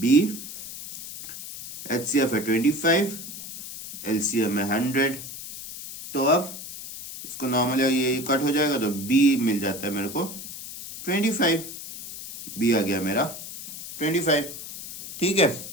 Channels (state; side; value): noise; left; hiss, 11 dB below the sound